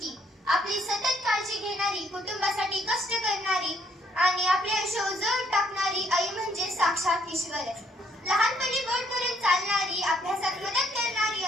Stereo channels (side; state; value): both; normal; correlation 0.68